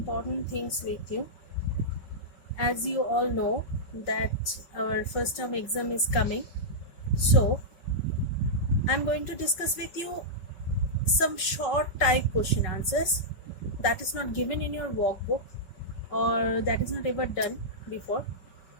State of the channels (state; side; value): late; right; 5.4 ms